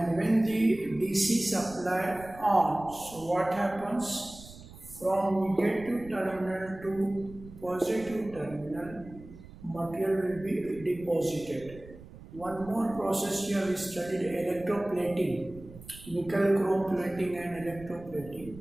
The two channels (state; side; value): noise; right; rumble, 18 dB below the sound